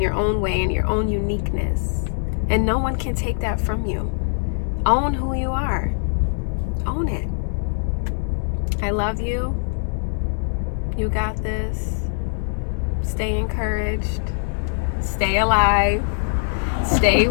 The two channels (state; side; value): silent; right; digital silence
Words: your own way, in your own uniqueness. And no one can take that from you. Own who you are. Own it. I love you. You got this. Stay encouraged. Stay alive. Stay